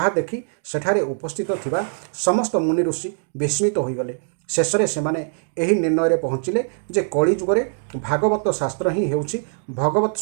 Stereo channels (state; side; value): silent; left; digital silence